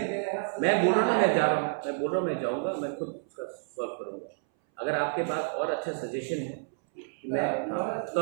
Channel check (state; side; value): silent; left; 58 dB below the other